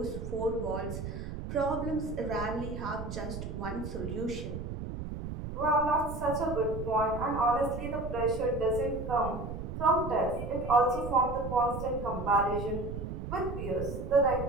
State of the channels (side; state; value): right; noise; rumble, 7 dB below the sound